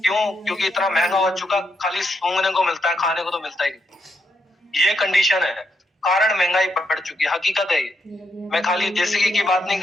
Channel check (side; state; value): both; normal; correlation 0.79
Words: क्यों? क्योंकि इतना महंगा हो चुका, खाली सूंघने को मिलता है, खाने को तो मिलता ही नहीं। ये कंडीशन है, कारण महंगाई बढ़ चुकी है, हकीकत है ये। मैं खाली देसी घी की बात नहीं